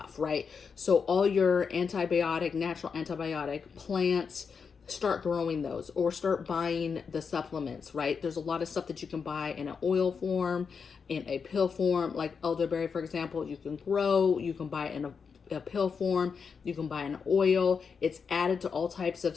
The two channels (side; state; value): right; quieter; 5.9 dB